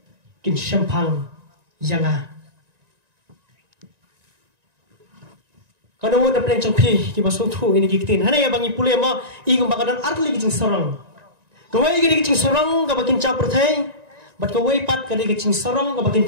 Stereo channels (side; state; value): left; late; 1.9 ms